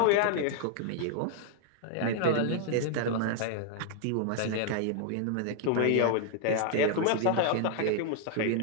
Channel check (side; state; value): both; different; correlation 0.00